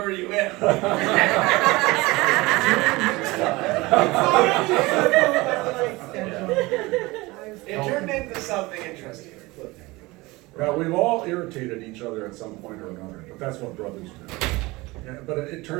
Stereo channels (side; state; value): left; quieter; 22.0 dB